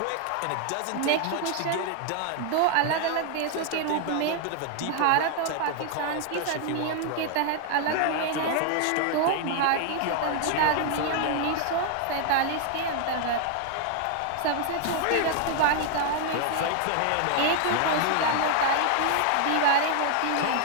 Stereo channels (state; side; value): different; both; correlation 0.00